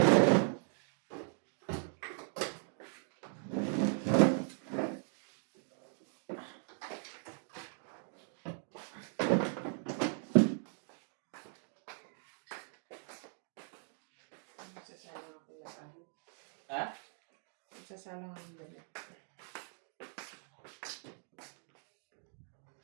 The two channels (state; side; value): silent; left; 52 dB below the other